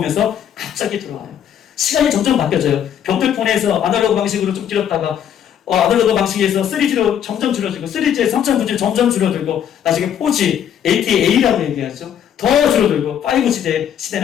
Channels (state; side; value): quieter; right; 9.4 dB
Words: 갑자기 들어와요. 시간이 점점 바뀌어져요. 벽돌폰에서 아날로그 방식으로 좀 길었다가 아날로그 방식에서 3G로 점점 줄어들고 3G에서 3.9G로 점점 줄어들고 나중에 4G, LTEA라고 얘기하죠. 더 줄어들고 5G